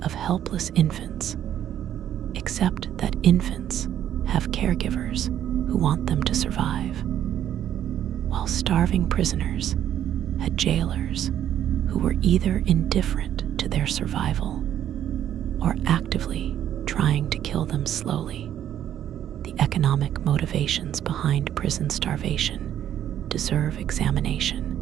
of helpless infants, except that infants have caregivers who want them to survive, while starving prisoners had jailers who were either indifferent to their survival or actively trying to kill them slowly. The economic motivations behind prison starvation deserve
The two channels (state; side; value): quieter; left; 10.7 dB